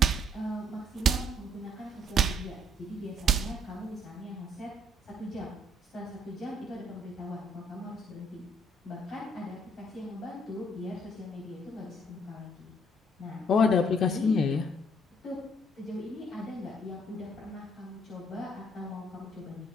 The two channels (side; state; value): both; normal; correlation 0.66